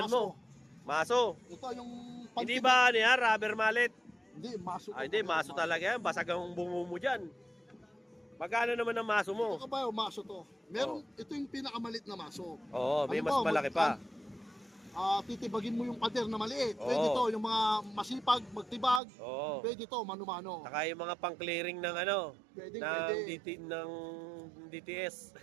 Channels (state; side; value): drops out; left; at 19.0 s